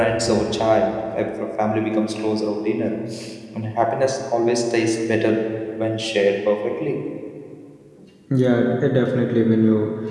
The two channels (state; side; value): identical; both; correlation 1.00